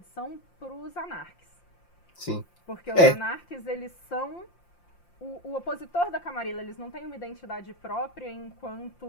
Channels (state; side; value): late; right; 5.7 ms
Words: pros anarques. sim. Porque os É, anarques, eles são o opositor da Camarilla, eles não têm uma identidade própria